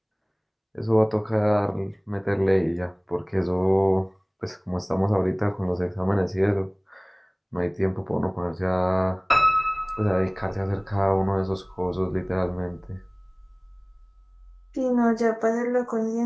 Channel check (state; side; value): identical; both; correlation 1.00